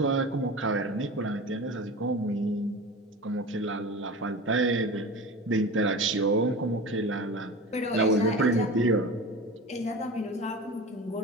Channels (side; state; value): both; normal; correlation 0.32